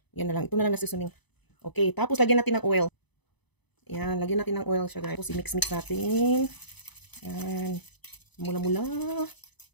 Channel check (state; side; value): late; right; 0.99 ms